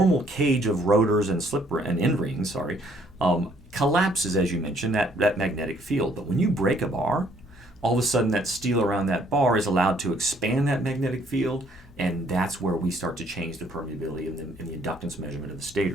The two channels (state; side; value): normal; both; correlation 0.64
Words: cage of rotors and end rings, collapses, as you mentioned, that magnetic field. But when you break a bar, all of a sudden that steel around that bar is allowed to expand that magnetic field, And that's where we start to change the permeability and the inductance measurement of the